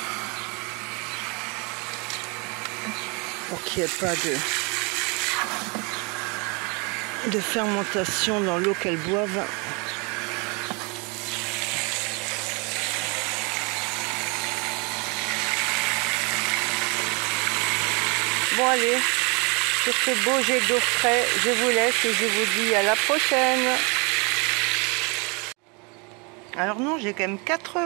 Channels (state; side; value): quieter; left; 30.9 dB